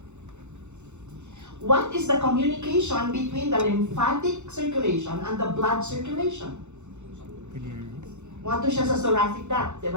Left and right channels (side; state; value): left; late; 0.83 ms